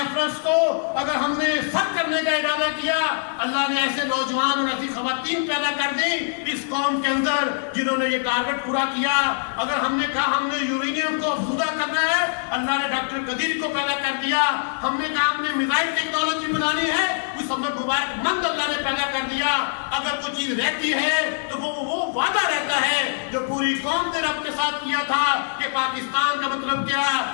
کو اگر ہم نے سر کرنے کا ارادہ کیا، اللہ نے ایسے نوجوان اور ایسی خواتین پیدا کر دی اس قوم کے اندر جنہوں نے یہ ٹارگٹ پورا کیا. اگر ہم نے کہا ہم نے یورینیم کو افزودہ کرنا ہے، اللہ نے ڈاکٹر قدیر کو پیدا کر دیا. ہم نے کہا ہم نے میزائل ٹیکنالوجی بنانی ہے، اس ہمیں مبارک مند اللہ نے پیدا کر دیا. اگر کوئی چیز رہتی ہے تو وہ وعدہ رہتا ہے جو پوری قوم نے رب کے ساتھ کیا تھا کہ پاکستان کا مطلب کیا،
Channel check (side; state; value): right; silent; digital silence